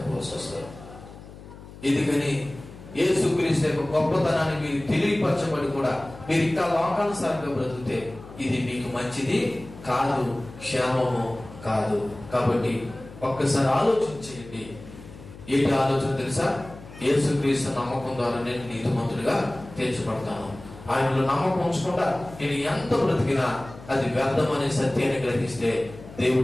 వస్తుంది. ఎందుకని యేసుక్రీస్తు యొక్క గొప్పతనాన్ని మీరు తెలియపరచబడి కూడా మీరు ఇంకా లోకానుసారంగా బ్రతికితే ఇది మీకు మంచిది కాదు, క్షేమము కాదు. కాబట్టి ఒక్కసారి ఆలోచించేయండి. ఏంటి ఆలోచన తెలుసా? యేసుక్రీస్తు నమ్మకం ద్వారా నేను నీతిమంతుడిగా తీర్చబడతాను. ఆయనలో నమ్మకం ఉంచకుండా నేను ఎంత బ్రతికినా అది వ్యర్థమనే సత్యాన్ని గ్రహిస్తే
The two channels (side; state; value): left; noise; hum, 17 dB below the sound